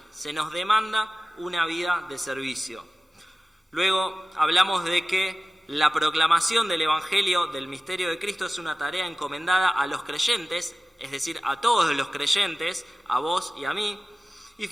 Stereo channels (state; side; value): normal; both; correlation 0.96